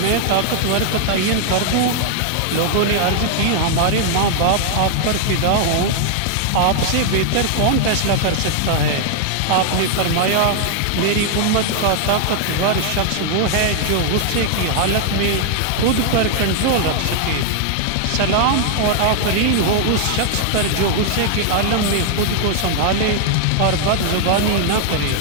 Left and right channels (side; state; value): both; different; correlation 0.00